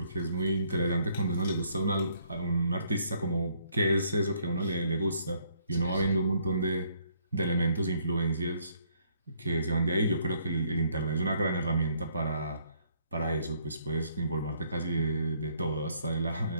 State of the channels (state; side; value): inverted; both; correlation -0.67